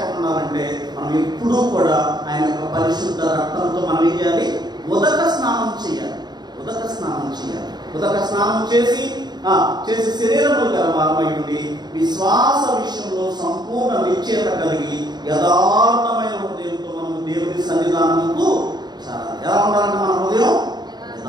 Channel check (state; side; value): late; left; 0.20 ms